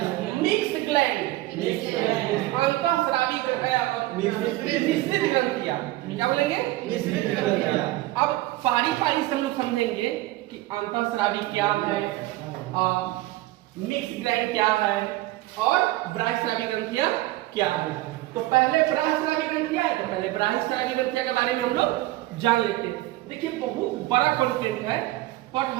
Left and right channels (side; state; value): left; quieter; 17.7 dB